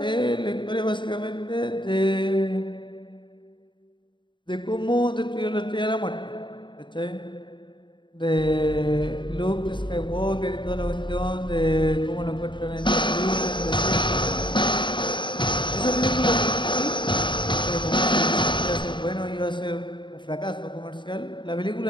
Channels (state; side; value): late; right; 0.23 ms